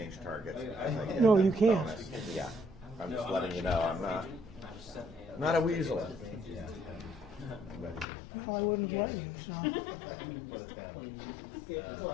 targets. as I get No, that you can't. bonus. Yeah, I'm just letting you know. I'm not a weasel. well, I wouldn't have let you, so. Yeah,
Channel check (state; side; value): drops out; right; at 8.1 s